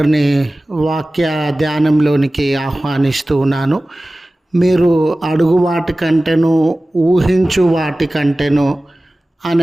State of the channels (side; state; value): both; normal; correlation 0.97